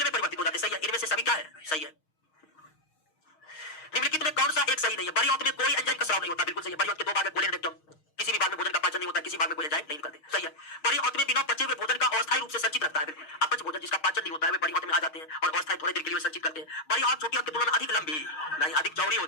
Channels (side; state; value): right; late; 6.4 ms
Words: में परिवर्तित हो जाते हैं, सही है। इनमें से सभी क्या है? सही है। निम्नलिखित में कौन सा एक सही नहीं है? बड़ी आंत में कोई एंजाइम का स्राव नहीं होता, बिल्कुल सही है। बड़ी आंत के दो भाग है, कोलेन और रेक्टम। किसी भी भाग में भोजन का पाचन नहीं होता, किसी भाग में कोई एंजाइम नहीं निकलते, सही है। बड़ी आंत में बिना पचे हुए भोजन का अस्थायी रूप से संचित रहता है, बिल्कुल। अपच भोजन जिसका पाचन नहीं होता है वे बड़ी आंत में आ जाते हैं और अस्थायी थोड़ी देर के लिए संचित करते हैं। बड़ी आंत छोटी आंत की तुलना में अधिक लंबी नहीं, अधिक चौड़ी